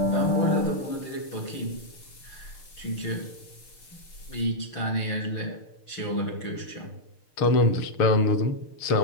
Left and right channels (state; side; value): late; right; 6.6 ms